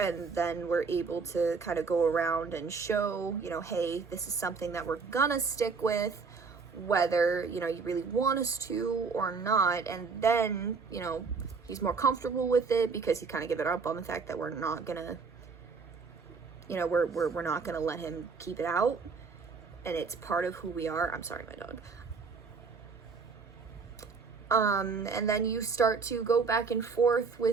then we're able to kind of go around and show, hey, this is something that we're gonna stick with, whether, you really want us to or not. And then, he's more comfortable with it because he kind of gave it up on the fact that we're not gonna You know, we're not going to let him keep it out, and it's part of who we are. I'm sorry, my dog. And then you start to go back and forth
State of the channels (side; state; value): left; quieter; 4.9 dB